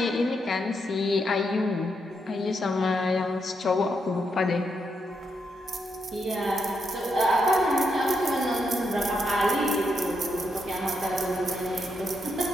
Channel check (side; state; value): both; normal; correlation 0.80